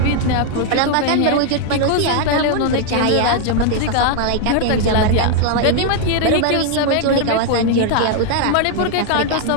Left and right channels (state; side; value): different; both; correlation 0.00